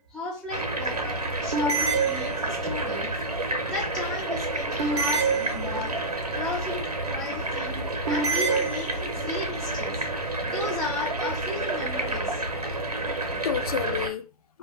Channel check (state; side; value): normal; both; correlation -0.13